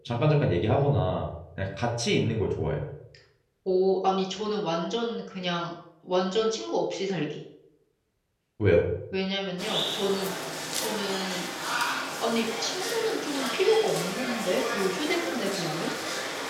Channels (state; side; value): identical; both; correlation 1.00